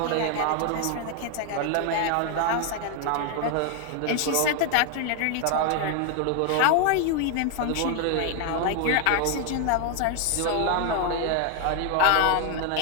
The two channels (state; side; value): different; both; correlation 0.01